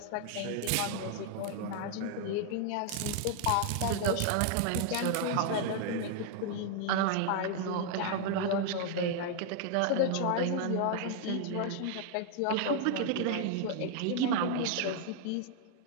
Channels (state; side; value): different; both; correlation 0.00